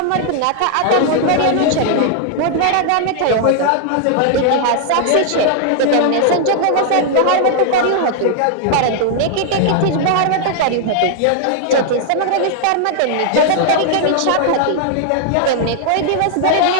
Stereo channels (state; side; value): different; both; correlation 0.00